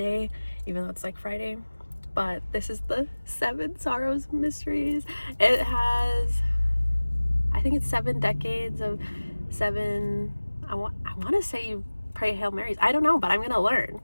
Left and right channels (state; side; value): inverted; both; correlation -1.00